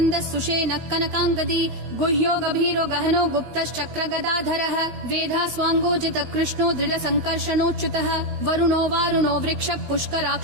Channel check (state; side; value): late; left; 16 ms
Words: सुषेण कनकाङ्गदी गुह्यो गभीरो गहनो गुप्तश्चक्र गदाधरः वेधा स्वाङ्गोजित कृष्णो दृढ संकर्षणोच्युतः वरुणो वारुणो वृक्ष